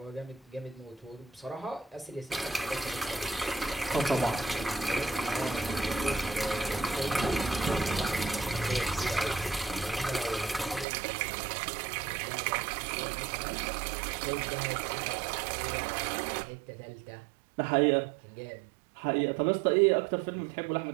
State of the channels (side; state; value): left; drops out; at 10.9 s